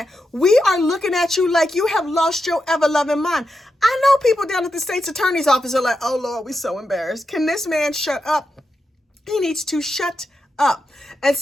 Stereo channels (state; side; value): normal; both; correlation 0.87